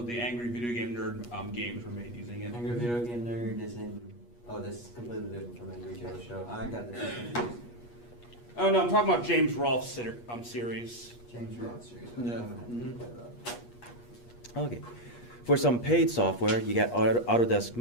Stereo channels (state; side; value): late; right; 8.4 ms